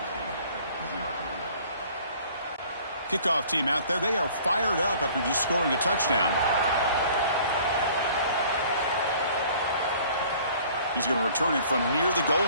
Kickoff team out there. They are fired up after just scoring a touchdown. He's going to return it from near the goal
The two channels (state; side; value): inverted; both; correlation -0.52